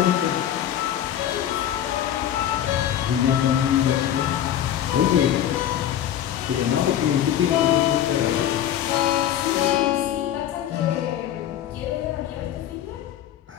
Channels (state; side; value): quieter; right; 10.9 dB